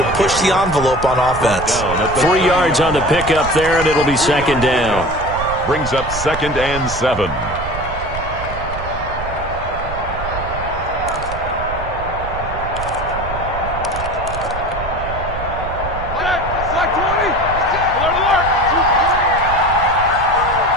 push the envelope on offense. 3 yards on the pickup there, and it'll be second down. Brings up 2nd and 7.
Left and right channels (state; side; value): noise; right; rumble, 9 dB below the sound